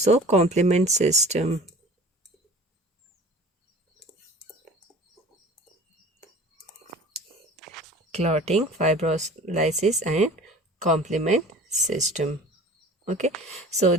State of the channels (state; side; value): normal; both; correlation 0.43